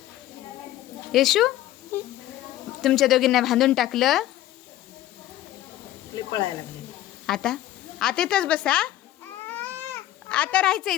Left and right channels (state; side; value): quieter; right; 13.9 dB